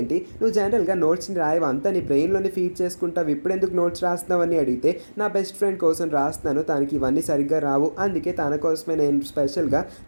నువ్వు జనరల్గా నోట్స్ని రాయవు, అంతా నీ బ్రెయిన్లోనే ఫీడ్ చేసుకుంటావు, ఇప్పుడెందుకు నోట్స్ రాస్తున్నావని అడిగితే, నా బెస్ట్ ఫ్రెండ్ కోసం రాస్తున్నాను, తనకి ఇవన్నీ సరిగ్గా రావు, అందుకే తన కోసమే నేను స్పెషల్గా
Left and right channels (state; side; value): inverted; both; correlation -1.00